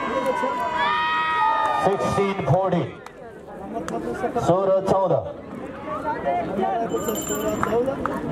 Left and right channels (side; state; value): both; identical; correlation 1.00